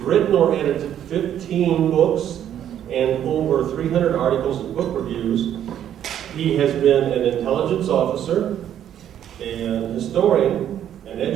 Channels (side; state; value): left; quieter; 10.4 dB